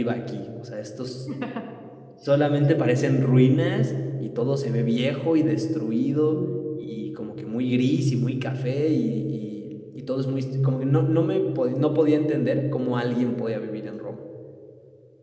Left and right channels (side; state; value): both; identical; correlation 1.00